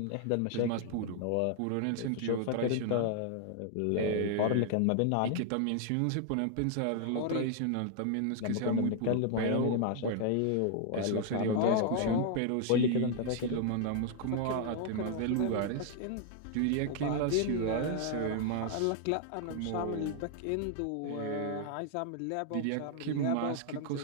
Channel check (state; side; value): different; both; correlation 0.00